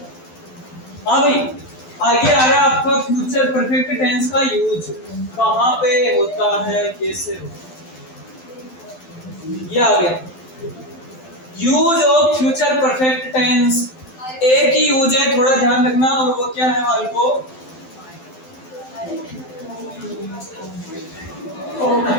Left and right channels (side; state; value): right; late; 12 ms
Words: हाँ भाई, आगे आ रहा है आपका फ्यूचर परफेक्ट टेंस का यूज कहाँ पे होता है, कैसे होता है। ये आ गया use of future perfect tense. एक ही यूज है, थोड़ा ध्यान रखना, और वो क्या है वाले को